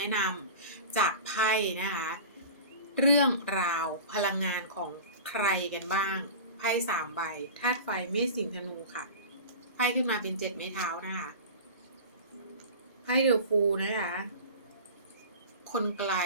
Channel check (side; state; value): both; inverted; correlation -0.34